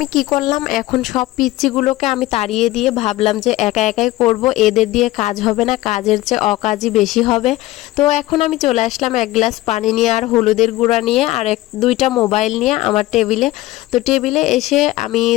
কি করলাম, এখন সব পিচ্চিগুলোকে আমি তাড়িয়ে দিয়ে ভাবলাম যে একা একাই করব, এদের দিয়ে কাজ হবে না, কাজের চেয়ে অকাজই বেশি হবে। তো এখন আমি চলে আসলাম এক গ্লাস পানি নিয়ে আর হলুদের গুঁড়া নিয়ে আর দুইটা মোবাইল নিয়ে আমার টেবিলে। তো টেবিলে এসে আমি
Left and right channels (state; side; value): quieter; right; 17.3 dB